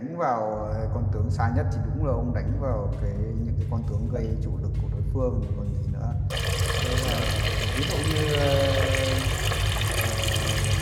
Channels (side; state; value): both; identical; correlation 1.00